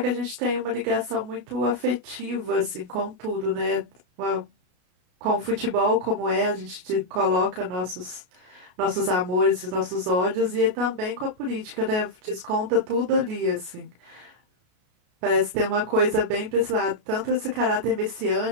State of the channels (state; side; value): late; left; 33 ms